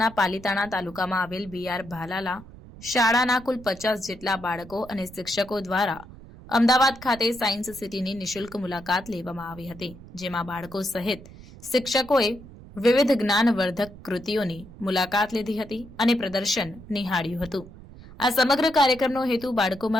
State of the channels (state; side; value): noise; right; rumble, 18 dB below the sound